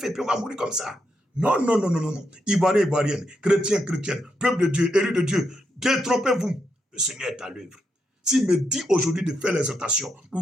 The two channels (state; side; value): normal; both; correlation 0.81